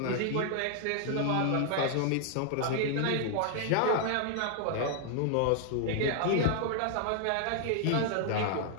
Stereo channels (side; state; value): both; different; correlation 0.00